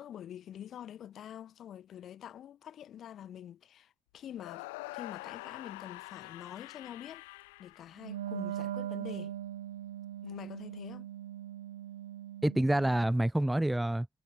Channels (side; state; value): both; normal; correlation 0.77